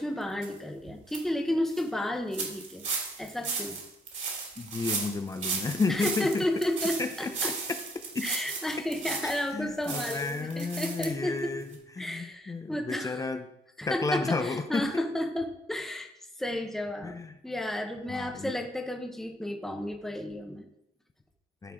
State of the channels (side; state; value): both; normal; correlation 0.72